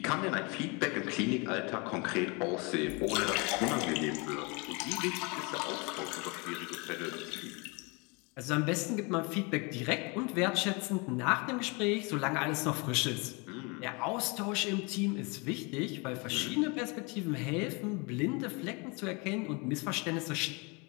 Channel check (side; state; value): right; quieter; 29.7 dB